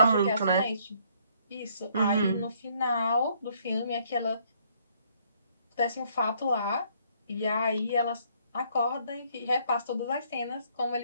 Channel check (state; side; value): inverted; both; correlation -0.65